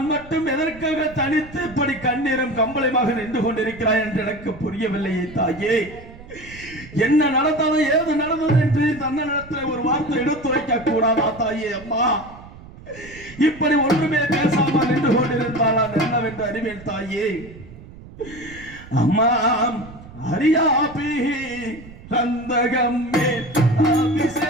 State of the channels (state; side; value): noise; right; rumble, 18 dB below the sound